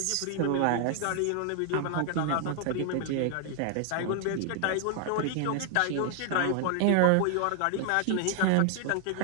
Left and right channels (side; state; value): both; different; correlation 0.00